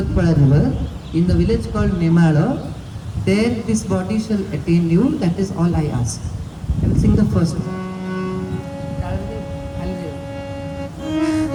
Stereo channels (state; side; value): identical; both; correlation 1.00